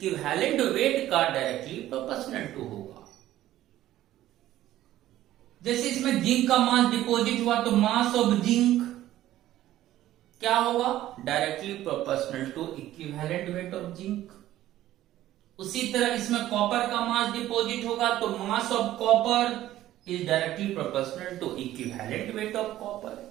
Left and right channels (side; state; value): left; quieter; 13.9 dB